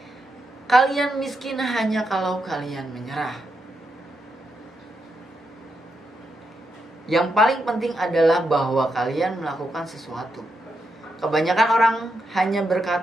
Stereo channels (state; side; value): normal; both; correlation 0.84